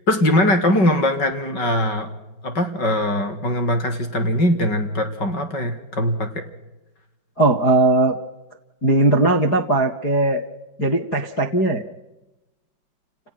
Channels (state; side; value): late; right; 5.3 ms